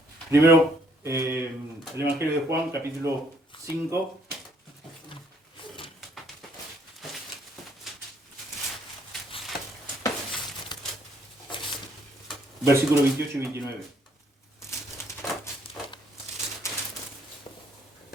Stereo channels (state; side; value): normal; both; correlation 0.67